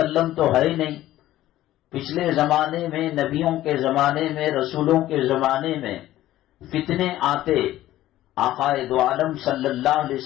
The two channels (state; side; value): quieter; right; 14.5 dB